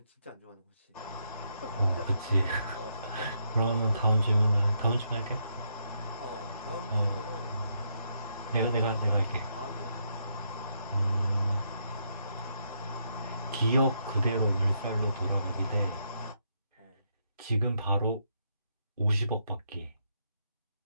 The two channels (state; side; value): inverted; both; correlation -0.76